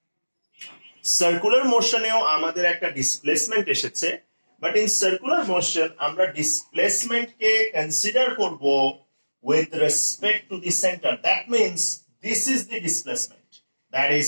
সার্কুলার মোশনেও আমাদের একটা ডিসপ্লেসমেন্ট এসেছে, বাট ইন সার্কুলার মোশন আমরা ডিসপ্লেসমেন্টকে কনসিডার করব with respect to the center. That means this is the displacement, that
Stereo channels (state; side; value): inverted; both; correlation -1.00